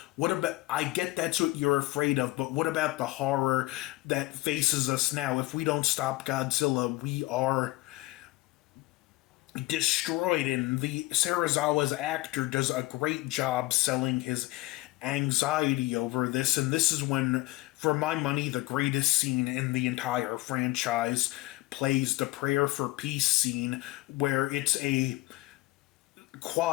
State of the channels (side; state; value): right; quieter; 20.5 dB